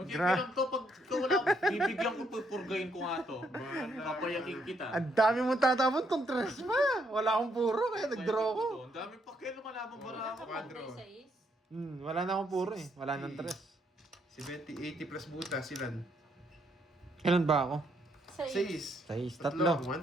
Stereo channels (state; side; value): normal; both; correlation 0.74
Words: Gra- lang to, pag ikaw wala, bibigyan ko, pupurgayin ko nga to. Papayakin kita. Ang dami mong tatapon kung tres ma. Wala akong puro kaya nag-draw ko. Ang dami pa kayo lumalaban bara ako. Quadro. Wala na akong puro eh. Wala nang tres. Si Betty, 80 plus buta, silan. Kailan ba ako? 6. Size, tatlo.